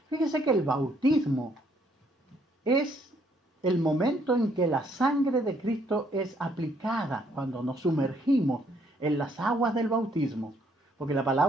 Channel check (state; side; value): normal; both; correlation 0.68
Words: Fíjese que el bautismo es el momento en que la sangre de Cristo es aplicada cuando nos sumergimos en las aguas del bautismo. Porque la